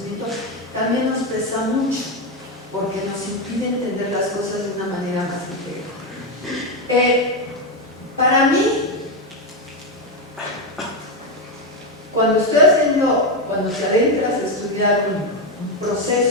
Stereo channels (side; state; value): both; normal; correlation 0.08